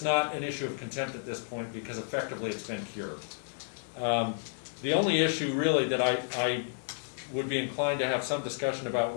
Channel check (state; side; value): silent; right; digital silence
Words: an issue of contempt at this point because effectively it's been cured. The only issue really that I would be inclined to have some discussion about